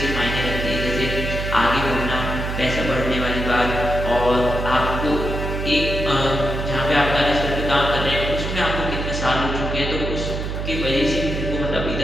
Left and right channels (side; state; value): right; noise; hum, 3 dB below the sound